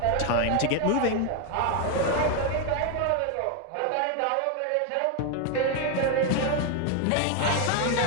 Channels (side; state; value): both; different; correlation 0.01